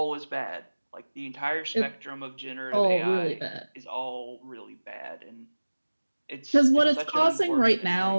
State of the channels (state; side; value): inverted; both; correlation -1.00